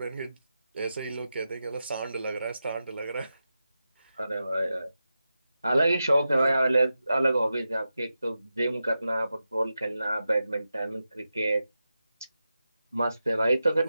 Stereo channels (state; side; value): inverted; both; correlation -0.91